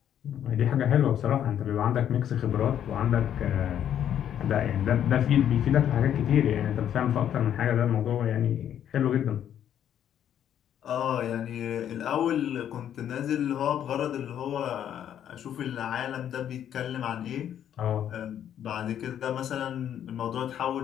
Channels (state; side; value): quieter; right; 10.0 dB